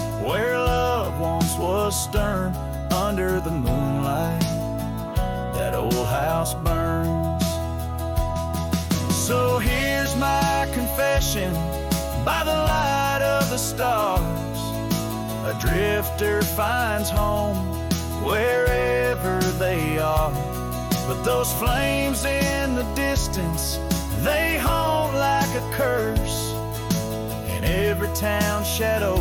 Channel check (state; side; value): identical; both; correlation 1.00